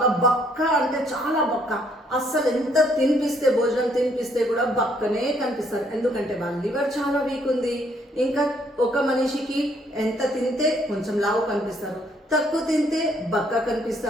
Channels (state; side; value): normal; both; correlation 0.67